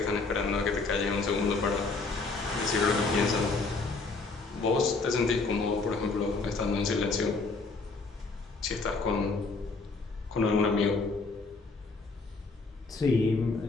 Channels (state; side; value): quieter; right; 3.9 dB